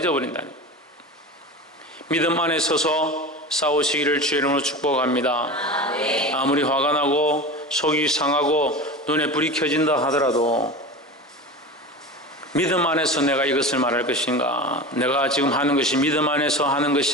거예요. 믿음 안에 서서 싸우시기를 주의 이름으로 축복합니다. 아무리 화가 나고 속이 상하고 눈에 불이 켜진다 하더라도 믿음 안에서 내가 이것을 말할 것인가, 내가 지금 하는 것이 믿음 안에서 하는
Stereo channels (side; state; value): both; normal; correlation 0.30